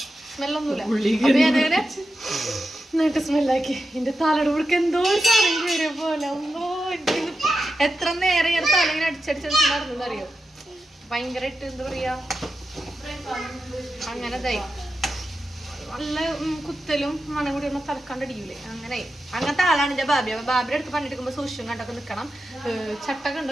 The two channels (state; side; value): normal; both; correlation 0.90